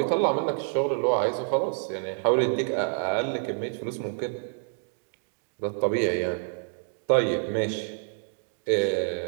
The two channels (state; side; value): silent; left; digital silence